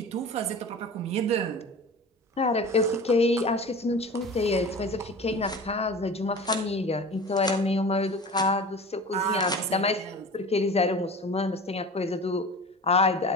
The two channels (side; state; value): both; normal; correlation 0.36